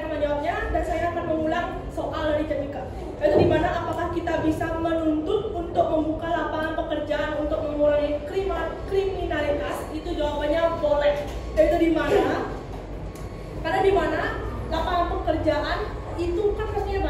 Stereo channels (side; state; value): both; identical; correlation 1.00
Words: menjawabnya dan saya akan mengulang soal dari Jadmika. Yaitu di mana apakah kita bisa menuntut untuk membuka lapangan pekerjaan untuk mengurangi kriminalitas? Itu jawabannya boleh. Yaitu di mana? Karena di mana lapangan pekerjaan itu kan pastinya